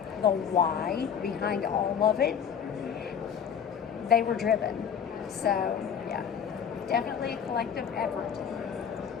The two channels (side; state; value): right; quieter; 7.8 dB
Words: the why behind all of it, they were driven. So yeah, definitely a collective effort.